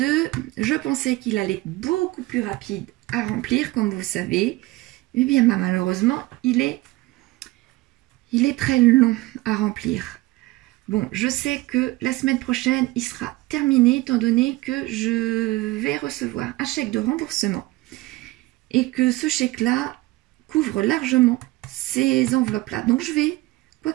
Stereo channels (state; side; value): quieter; left; 19.7 dB